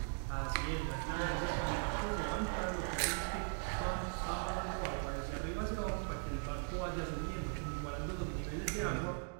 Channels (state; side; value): silent; left; 51 dB below the other